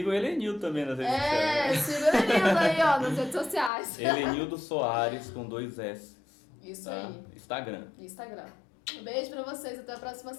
Helenildo também nas redes sociais. Sigam o Helenildo aí, ó, nas redes sociais. Helenildo Soares com 2 S. Isso tá? aí. Instagram. Beijo pra vocês, até a próxima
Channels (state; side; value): drops out; right; at 3.7 s